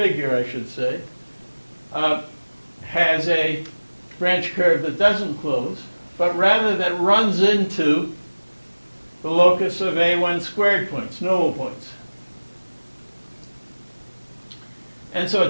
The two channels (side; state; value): both; inverted; correlation -1.00